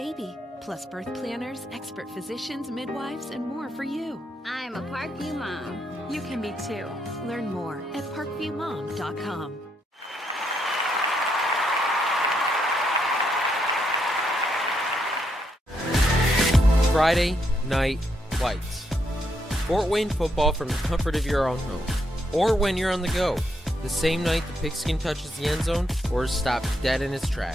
plus birth planners, expert physicians, midwives, and more for you. I'm a Parkview mom. You can be too. Learn more at parkviewmom.com. Friday Night Lights. Fort Wayne football from the comfort of your own home, or when you're on the go. The same night the pigskin touches the end zone or is stopped dead in its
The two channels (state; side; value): normal; both; correlation 0.78